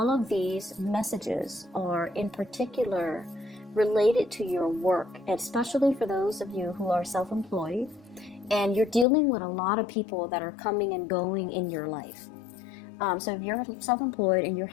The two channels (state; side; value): drops out; right; at 9.1 s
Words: of these messages are in particular related to your work, especially for those of you who are self-employed and you're dealing with a lot of people that are coming and going in your life. So if you're self-employed and you're